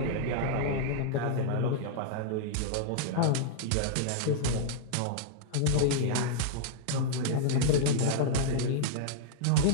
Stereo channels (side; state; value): both; different; correlation -0.02